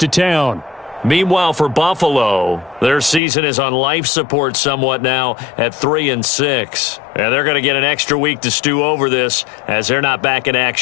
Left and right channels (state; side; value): drops out; right; at 3.2 s